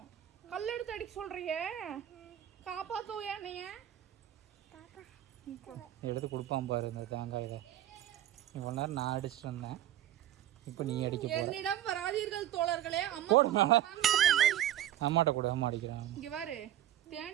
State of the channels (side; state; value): left; quieter; 12.4 dB